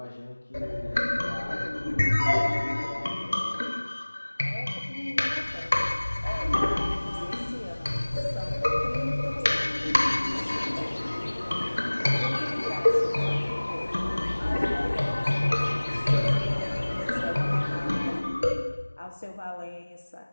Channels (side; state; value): both; inverted; correlation -1.00